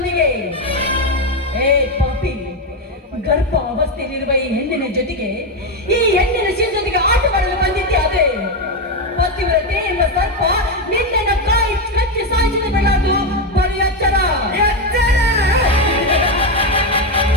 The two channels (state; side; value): normal; both; correlation 0.09